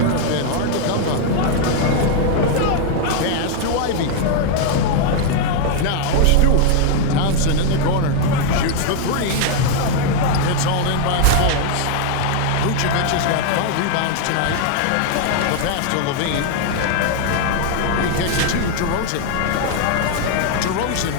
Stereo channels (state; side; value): different; both; correlation 0.00